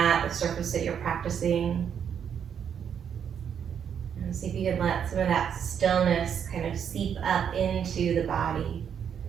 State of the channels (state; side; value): quieter; left; 8.1 dB